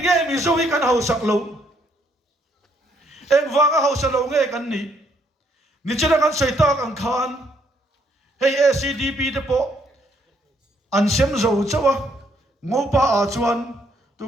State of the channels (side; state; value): both; normal; correlation 0.70